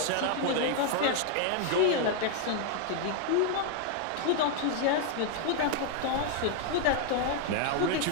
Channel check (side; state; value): both; different; correlation 0.00